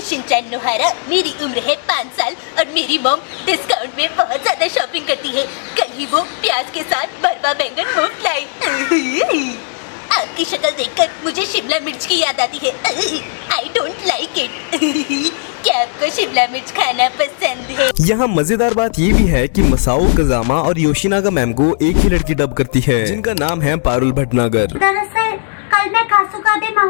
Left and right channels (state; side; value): silent; right; digital silence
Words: शिनचैन नोहारा। मेरी उम्र है 5 साल और मेरी मॉम डिस्काउंट में बहुत ज्यादा शॉपिंग करती है। कल ही वो प्याज के साथ भरवा बैंगन मुफ्त लाई। आपकी शक्ल देखकर मुझे शिमला मिर्च की याद आती है। I don't like it. क्या आपको शिमला मिर्च खाना पसंद है? यहाँ मजेदार बात ये भी है कि मसाओ कजामा और योशिनागा मैम को एक ही लड़की डब करती है जिनका नाम है पारुल भटनागर। दरअसल कल मैं कासुकाबे